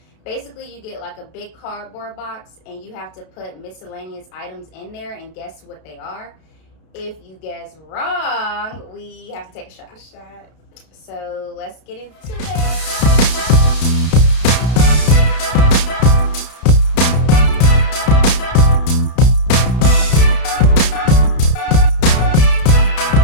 Basically, you get like a big cardboard box and you have to put miscellaneous items in there and guess what they are. If you guess wrong, we have to take a shot. So let's get into it.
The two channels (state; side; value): late; right; 32 ms